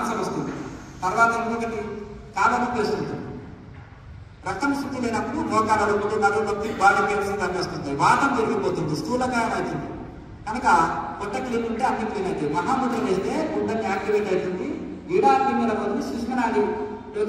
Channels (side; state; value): both; identical; correlation 1.00